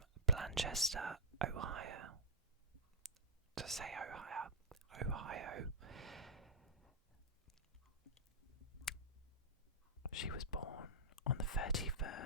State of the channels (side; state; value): both; normal; correlation -0.09